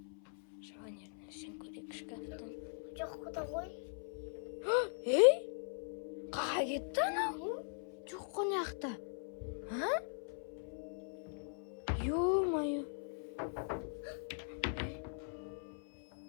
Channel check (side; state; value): right; silent; 51 dB below the other